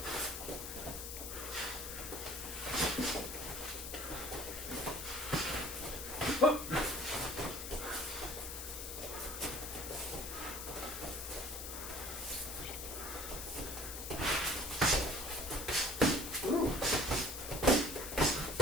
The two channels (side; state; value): left; noise; hiss, 7 dB below the sound